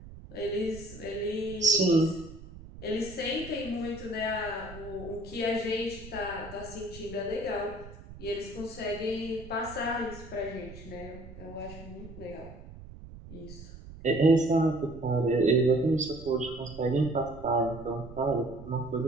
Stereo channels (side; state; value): right; noise; rumble, 15 dB below the sound